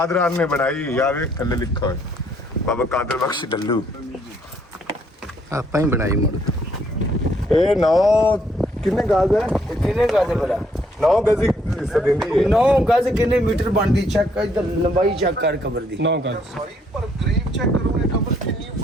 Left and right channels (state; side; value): normal; both; correlation 0.68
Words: ਨੇ ਬਣਾਈ ਯਾਰ ਵੇਖ ਥੱਲੇ ਲਿਖਾ ਹੋਇਆ ਬਾਬਾ ਕਾਦਰ ਬਖਸ਼ ਢੱਲੂ ਆਪਾਂ ਹੀ ਬਣਾਈ ਮੁੜ ਇਹ ਨੌ ਕਿੰਨੇ ਗਾਜ਼ ਹੈ ਇਹ ਕਿੰਨੇ ਗਾਜੇ ਭਲਾ 9 ਗਜ਼ ਹਿੱਸਾ ਦਿੰਦੀ ਹੈ 9 ਗਜ਼ ਕਿੰਨੇ ਮੀਟਰ ਬਣਦੀ ਚੈੱਕ ਇੱਧਰ ਲੰਬਾਈ ਚੈੱਕ ਕਰ ਕਬਰ ਦੀ 9 ਗਜ਼ ਸੌਰੀ ਪਰ ਕਰੀਬ ਚੈੱਕ ਕਰੋ ਇਹ ਕਬਰ ਕਿੰਨੀ